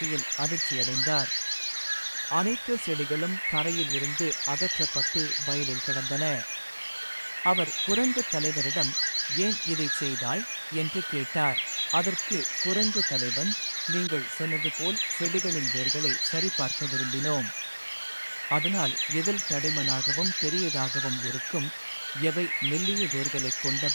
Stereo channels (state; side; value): inverted; both; correlation -1.00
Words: அதிர்ச்சியடைந்தார். அனைத்து செடிகளும் தரையில் இருந்து அகற்றப்பட்டு வயலில் கிடந்தன. அவர் குரங்கு தலைவரிடம், ஏன் இதை செய்தாய் என்று கேட்டார். அதற்கு குரங்கு தலைவன், நீங்கள் சொன்னது போல் செடிகளின் வேர்களை சரிபார்க்க விரும்பினோம். அதனால் எதில் தடிமனாகவும் பெரியதாகவும் இருக்கும், எவை மெல்லிய வேர்களை